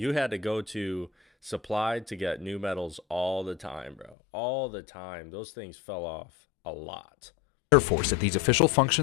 had to go to Supplied to get new medals all the time, bro. All the time. Those things fell off a lot. Air Force at these official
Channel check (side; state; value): right; drops out; at 4.2 s